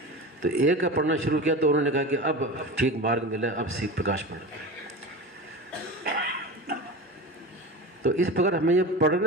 तो एक का पढ़ना शुरू किया तो उन्होंने कहा कि अब ठीक मार्ग मिला, अब सीख प्रकाश पढ़ो। तो इस प्रकार हमें ये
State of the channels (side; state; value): both; normal; correlation 0.29